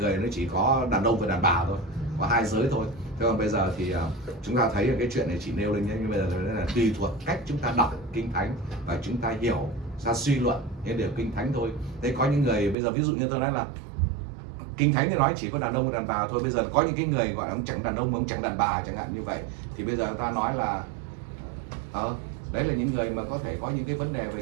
nó chỉ có đàn ông và đàn bà thôi, có hai giới thôi. Thế còn bây giờ thì chúng ta thấy cái chuyện này chỉ nêu lên nhé, nhưng bây giờ là tùy thuộc cách chúng ta đọc Kinh Thánh và chúng ta hiểu, ra suy luận những điều Kinh Thánh thôi. Thế có những người bây giờ ví dụ như tôi nói là Kinh Thánh thì nói chỉ có đàn ông và đàn bà thôi. Bây giờ có những cái người gọi là ông chẳng đàn ông, ông chẳng đàn bà chẳng hạn như vậy, thì bây giờ ta nói là đấy là những người mà có thể có những cái vấn đề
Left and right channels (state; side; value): drops out; left; at 12.8 s